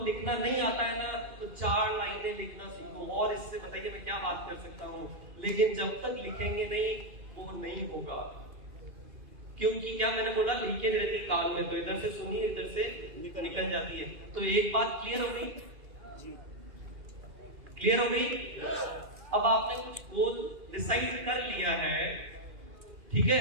लिखना नहीं आता है ना तो 4 लाइनें लिखना सीखो, और इससे बताइए मैं क्या बात कर सकता हूँ। लेकिन जब तक लिखेंगे नहीं वो नहीं होगा, क्योंकि क्या मैंने बोला लीकेज रहती है कान में, तो इधर से सुनिए इधर से निकल जाती है। तो एक बात क्लियर हो गई? क्लियर हो गई? अब आपने कुछ गोल डिसाइड कर लिया है, ठीक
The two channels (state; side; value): late; left; 2.4 ms